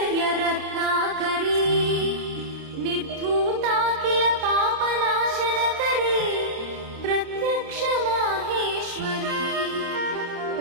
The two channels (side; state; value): left; late; 27 ms